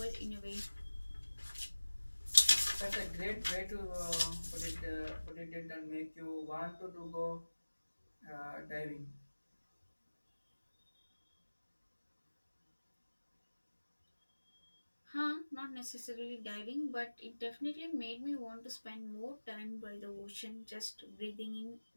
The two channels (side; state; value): both; inverted; correlation -1.00